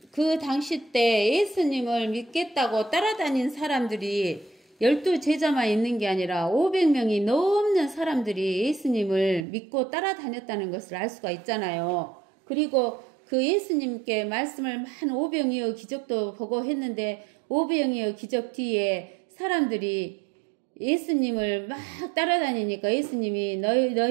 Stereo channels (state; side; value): drops out; left; at 9.4 s